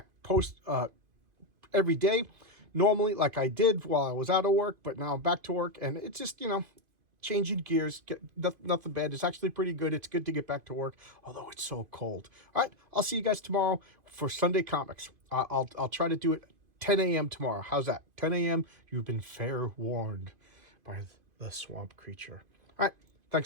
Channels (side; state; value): left; late; 2.5 ms